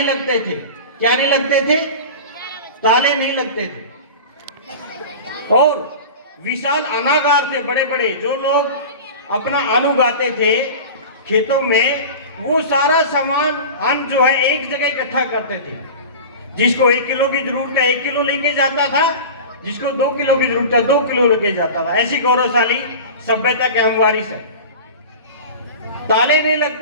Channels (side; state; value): both; inverted; correlation -0.33